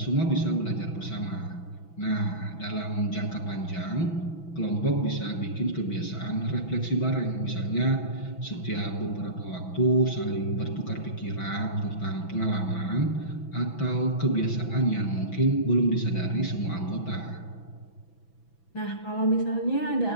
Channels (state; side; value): late; right; 6.0 ms